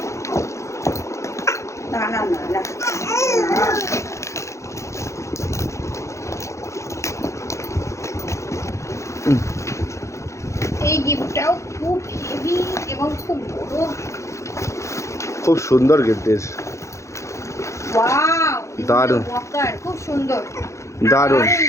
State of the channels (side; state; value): right; late; 0.14 ms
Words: এই গিফটটাও খুব হেভি এবং খুব বড়, খুব সুন্দর গিফট। ওয়াও, দারুণ, খুব সুন্দর, দারুণ